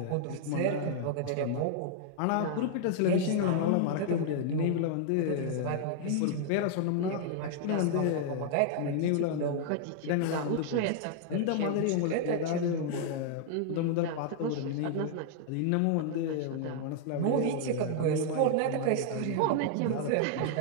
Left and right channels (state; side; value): different; both; correlation -0.01